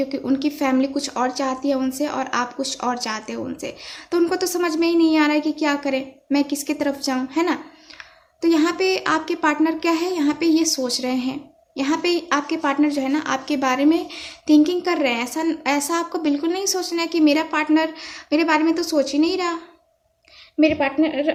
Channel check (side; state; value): both; identical; correlation 1.00